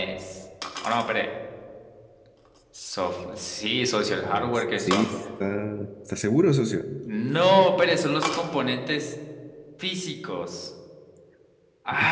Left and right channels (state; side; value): identical; both; correlation 1.00